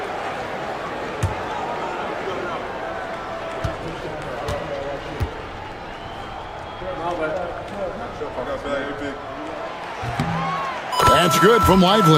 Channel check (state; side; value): identical; both; correlation 1.00